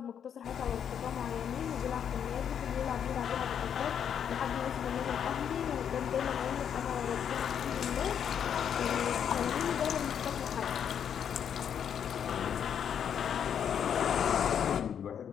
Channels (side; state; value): right; quieter; 8.4 dB